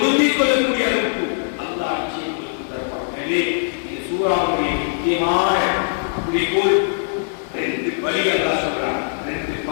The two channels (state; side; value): silent; right; 65 dB below the other